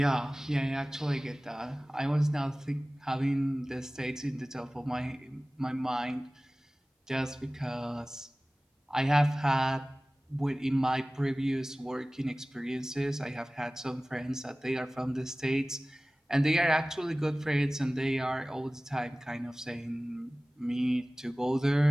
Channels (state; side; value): normal; both; correlation 0.98